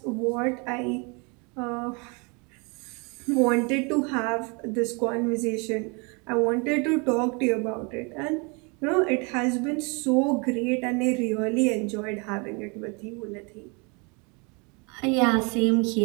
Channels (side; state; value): left; quieter; 31.7 dB